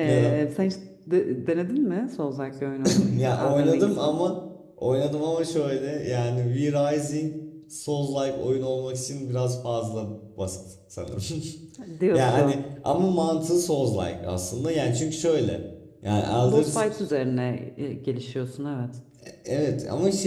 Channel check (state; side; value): identical; both; correlation 1.00